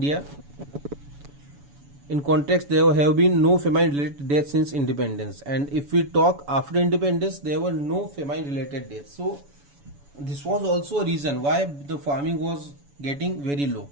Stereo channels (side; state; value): left; late; 7.0 ms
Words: In context, there have been no famine related deaths since independence, and if we talk after independence, there were no famine related deaths. So this was also a reason why the farming was getting very low.